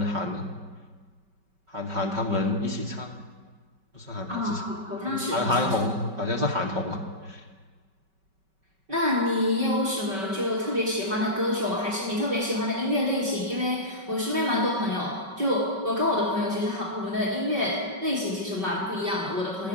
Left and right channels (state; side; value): late; left; 5.2 ms